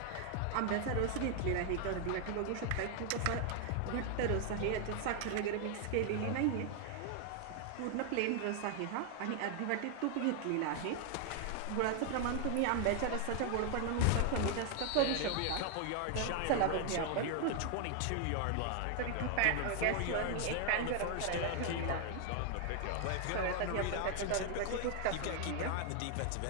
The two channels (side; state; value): both; different; correlation 0.00